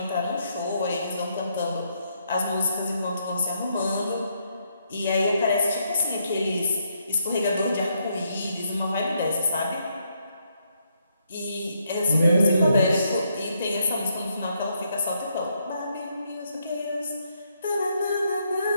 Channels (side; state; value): both; inverted; correlation -0.76